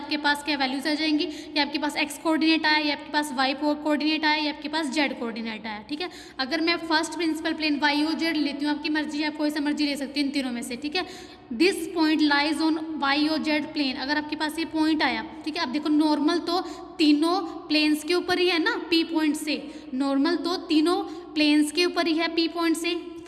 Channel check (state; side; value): identical; both; correlation 1.00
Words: पास क्या वैल्यूज आ जाएंगी, या आपके पास x कोऑर्डिनेट आया, या आपके पास y कोऑर्डिनेट आया, या आपके पास z कोऑर्डिनेट आया। ठीक है, अगर मैं फर्स्ट प्रिंसिपल प्लेन y और z लेती हूँ, आपकी मर्जी, आप कोई सा मर्जी ले सकती हूँ इन तीनों में से। ठीक है, this point lies on y और z प्लेन, अगर आपके पास ये पॉइंट आया। ठीक है, अब देखो नॉर्मल तो तीनों प्लेन्स के ऊपर ही है ना, P पॉइंट से, नॉर्मल तो तीनों प्लेन्स के ऊपर ही है P पॉइंट से।